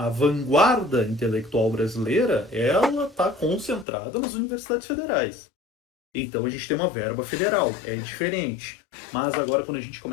vanguarda intelectual brasileira, ela está concentrada nas universidades federais. Então a gente tem uma verba federal, é diferente. Mas agora, quando a gente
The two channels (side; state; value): right; drops out; at 3.9 s